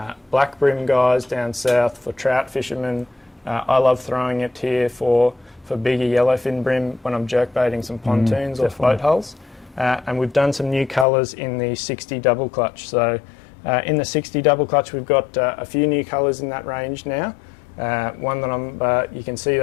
black brim guys down south, for trout fishermen. I love throwing it here for bigger yellowfin brim when I'm jerkbaiting some pontoons or float hulls. And we've done some new colours in the 60 double clutch. So in the 60 double clutch, we've got a few new colours in that range now. One that you can see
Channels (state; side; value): drops out; right; at 11.1 s